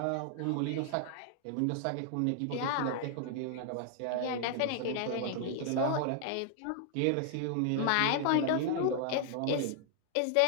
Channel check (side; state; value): both; different; correlation 0.00